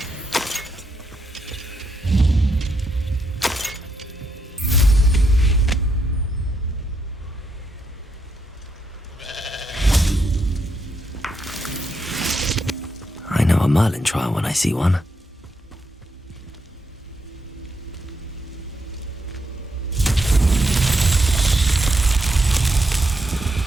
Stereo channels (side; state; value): both; normal; correlation 0.80